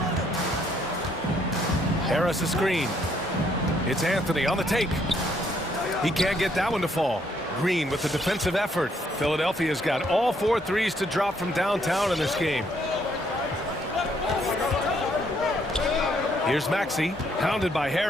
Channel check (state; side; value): normal; both; correlation 0.69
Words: Harris a screen. It's Anthony on the take. He can't get that one to fall. Green with the defensive effort. Philadelphia's got all 4 threes to drop from downtown in this game. Here's Maxey, hounded by